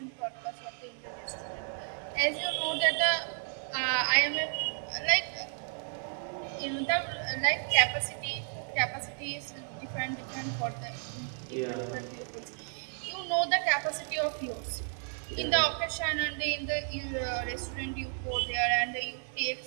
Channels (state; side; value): silent; left; 56 dB below the other